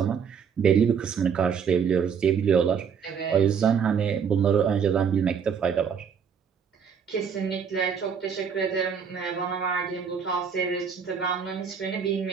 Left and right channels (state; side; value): quieter; left; 6.9 dB